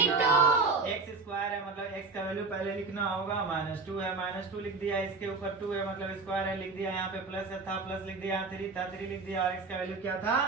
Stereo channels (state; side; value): quieter; left; 4.1 dB